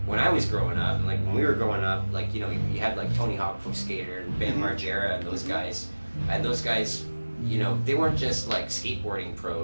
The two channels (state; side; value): inverted; both; correlation -1.00